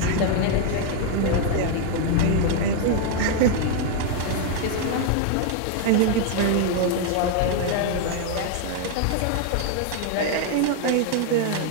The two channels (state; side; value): different; both; correlation 0.00